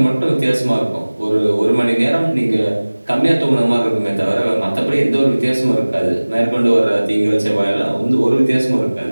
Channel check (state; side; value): inverted; both; correlation -1.00